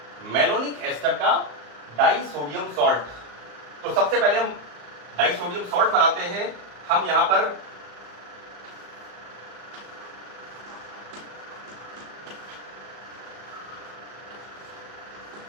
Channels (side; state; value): left; late; 34 ms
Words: मेलोनिक एस्टर का डाइसोडियम सॉल्ट, तो सबसे पहले हम डाइसोडियम सॉल्ट बनाते हैं। हम यहां पर